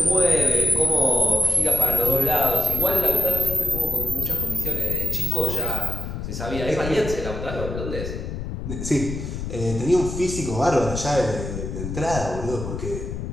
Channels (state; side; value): noise; left; rumble, 6 dB below the sound